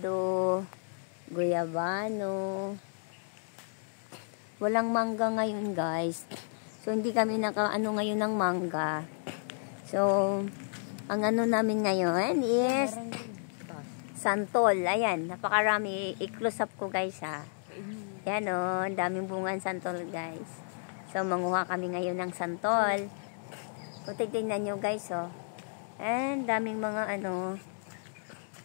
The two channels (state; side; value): silent; right; digital silence